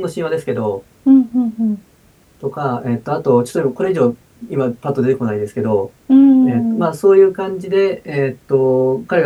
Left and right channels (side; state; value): both; identical; correlation 1.00